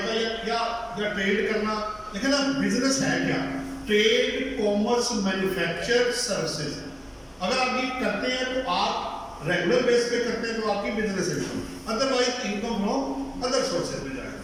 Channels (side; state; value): both; identical; correlation 1.00